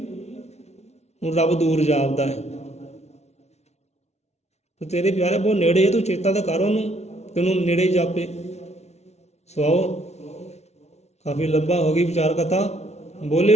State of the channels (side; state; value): right; late; 0.31 ms